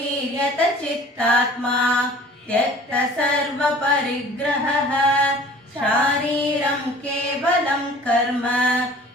चित्तात्मा त्यक्त सर्व परिग्रहः शारीरं केवलं कर्म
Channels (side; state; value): both; normal; correlation 0.48